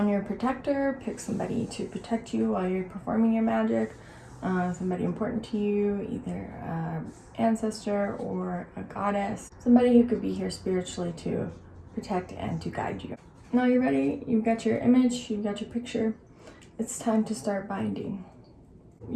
your protector. Pick somebody to protect you while you're performing your magic. Somebody important to you, either an ancestor or a goddess. Somebody who could be here spiritually to protect and to guide you. Now you're ready. You've got your image, you've got your picture. It's time to start binding.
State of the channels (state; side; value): identical; both; correlation 1.00